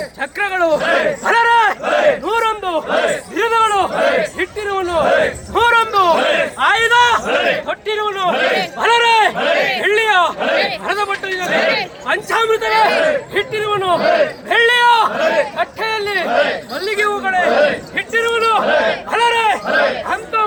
ಚಕ್ರಗಳು ಅಲರೆ 101 ಬಿರುದುಗಳು ಇಟ್ಟಿರುವನು 101 ಆಯುಧ ಕೊಟ್ಟಿರುವನು ಅಲರೆ ಬೆಳ್ಳಿಯ ಹರದ ಬಟ್ಟಲಿನಲ್ಲಿ ಪಂಚಾಮೃತವೇ ಇಟ್ಟಿರುವನು ಬೆಳ್ಳಿಯ ಕಟ್ಟೆಯಲ್ಲಿ ಮಲ್ಲಿಗೆ ಹೂಗಳೇ ಇಟ್ಟಿರುವನು ಅಲರೆ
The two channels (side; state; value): both; identical; correlation 1.00